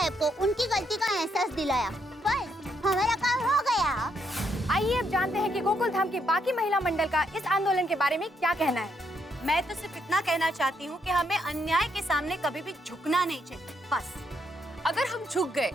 को उनकी गलती का एहसास दिलाया, बस हमारा काम हो गया। आइए अब जानते हैं कि गोकुल धाम के बाकी महिला मंडल का इस आंदोलन के बारे में क्या कहना है। मैं तो सिर्फ इतना कहना चाहती हूँ कि हमें अन्याय के सामने कभी भी झुकना नहीं चाहिए, बस। अगर हम झुक गए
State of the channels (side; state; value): both; normal; correlation 0.75